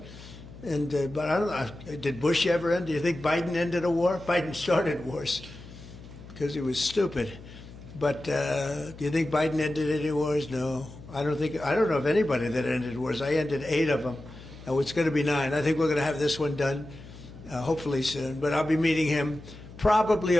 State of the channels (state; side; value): noise; left; hum, 17 dB below the sound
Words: And but I don't know, did Bush ever end? Do you think Biden ended a war? Biden started wars because he was stupid. But do you think Biden ended any wars? No. I don't know of anybody that ended wars. I ended 8 of them. Now it's going to be 9. I think we're going to have this one done hopefully soon. But I'll be meeting him probably